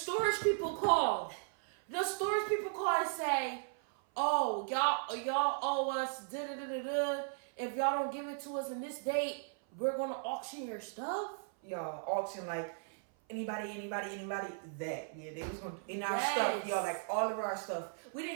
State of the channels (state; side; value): silent; left; 53 dB below the other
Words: people call. The storage people call and say, "Oh, y'all owe us da-da-da-da-da. If y'all don't give it to us in this date, we're gonna auction your stuff." Y'all auction like anybody that. Yeah, they was gonna in our stuff, y'all, like all of our stuff. We